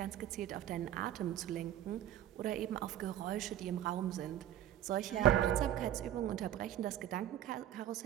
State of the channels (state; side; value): quieter; left; 12.0 dB